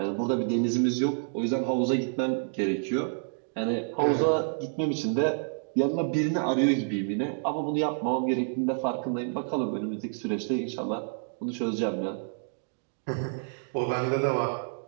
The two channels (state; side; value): silent; left; digital silence